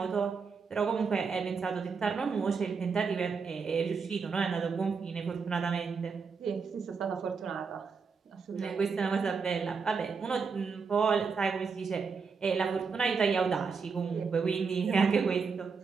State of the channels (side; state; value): left; quieter; 5.3 dB